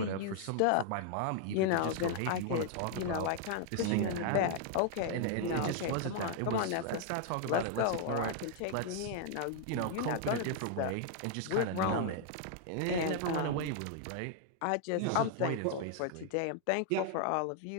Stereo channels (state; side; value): different; both; correlation 0.00